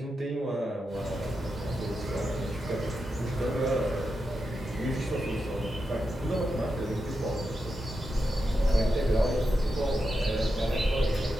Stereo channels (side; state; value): both; normal; correlation 0.88